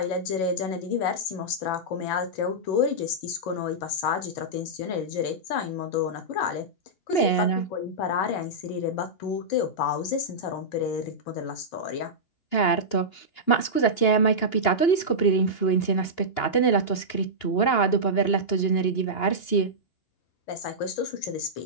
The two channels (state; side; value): late; right; 2.8 ms